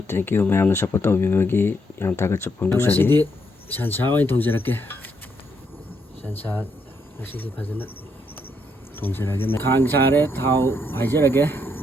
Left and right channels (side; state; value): both; normal; correlation 0.76